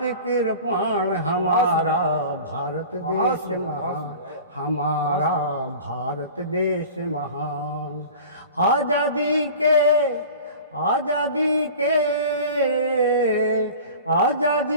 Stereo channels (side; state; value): both; inverted; correlation -0.39